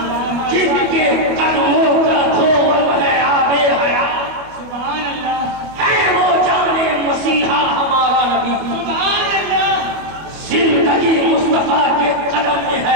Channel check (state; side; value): late; left; 25 ms